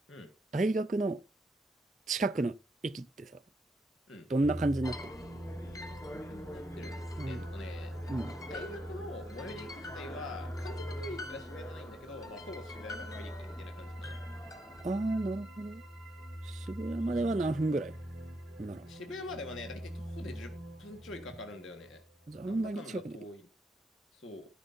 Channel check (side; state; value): both; normal; correlation 0.78